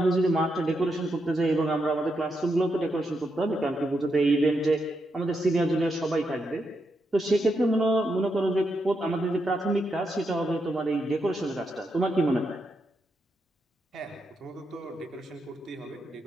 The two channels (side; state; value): both; normal; correlation 0.83